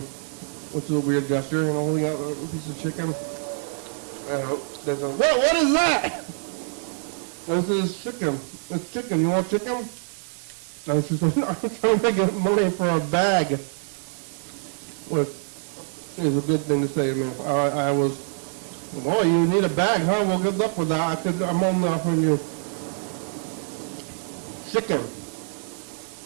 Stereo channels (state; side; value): silent; left; digital silence